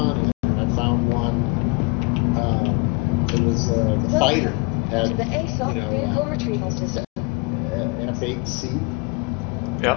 and I found one. It was the fighter had F8C.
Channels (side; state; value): right; quieter; 29.7 dB